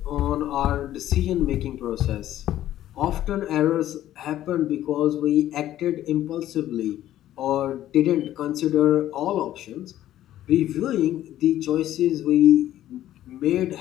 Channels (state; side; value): quieter; right; 12.9 dB